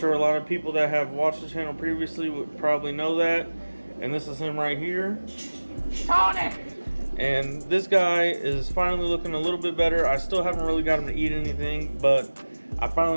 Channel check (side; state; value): both; inverted; correlation -1.00